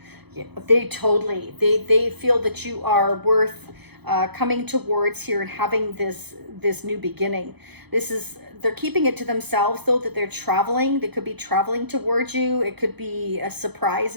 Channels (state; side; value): late; left; 0.98 ms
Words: Yeah, they totally, they feel that you are worth coming towards here and having this new beginning. They're keeping it to themselves though, that they're traveling. They could be traveling towards you. It could be a surprise